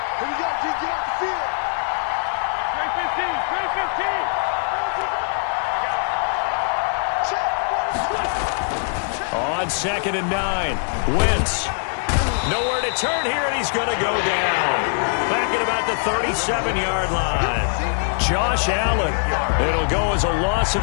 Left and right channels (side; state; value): right; silent; 55 dB below the other